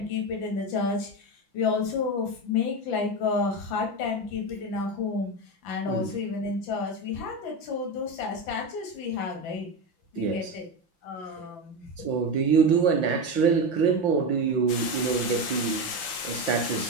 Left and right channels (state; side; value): late; right; 5.8 ms